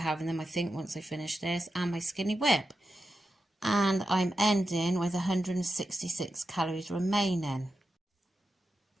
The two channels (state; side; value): normal; both; correlation 0.90